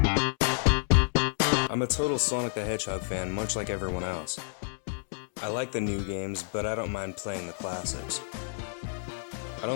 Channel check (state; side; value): silent; right; 58 dB below the other